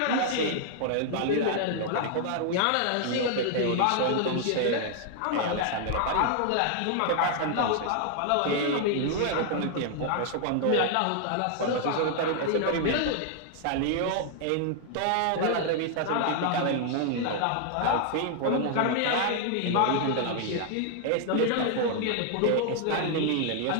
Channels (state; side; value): different; both; correlation 0.00